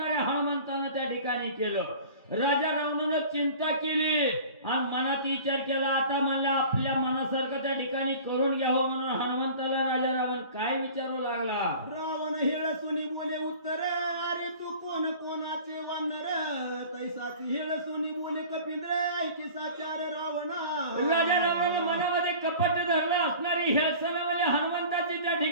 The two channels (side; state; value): both; inverted; correlation -0.42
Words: हनुमंतानं त्या ठिकाणी केलं. राजा रावणानं चिंता केली आणि मनात विचार केला, आता म्हणलं आपल्या मनासारखं त्या ठिकाणी करून घ्यावं. म्हणून हनुमंताला राजा रावण काय विचारू लागला. रावण हेळसुनी बोले उत्तर, अरे तू कोण कोणाचे वानर तैसाची हेळसुनी बोले कपिंद्र ऐकी साचार रावणा. राजा रावणानं मनामध्ये कपट धरलं असणारी हेळसणावाले हनुमंताची त्या